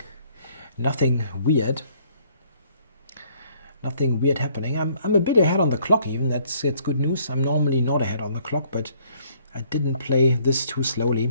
weird. Nothing weird happening. I'm a bit ahead on the clock even. It's good news. I'm normally not ahead on the clock, but I didn't play this too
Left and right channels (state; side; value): inverted; both; correlation -0.63